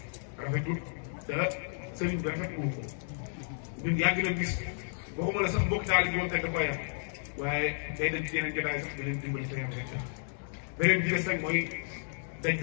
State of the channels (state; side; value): silent; right; digital silence